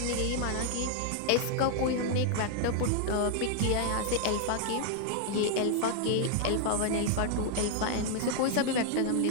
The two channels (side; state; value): both; different; correlation 0.00